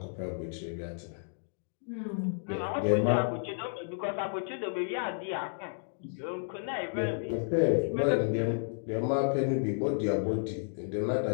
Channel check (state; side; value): silent; right; digital silence